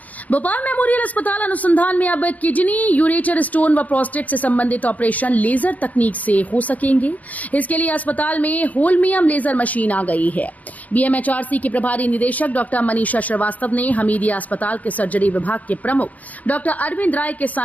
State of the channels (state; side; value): late; right; 0.075 ms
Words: भोपाल मेमोरियल अस्पताल अनुसंधान में अब किडनी, यूरेटर स्टोन व प्रोस्टेट से संबंधित ऑपरेशन लेजर तकनीक से हो सकेंगे। इसके लिए अस्पताल में होलमियम लेजर मशीन आ गई है। बीएमएचआरसी के प्रभारी निदेशक डॉक्टर मनीषा श्रीवास्तव ने हमीदिया अस्पताल के सर्जरी विभाग के प्रमुख डॉक्टर अरविंद राय के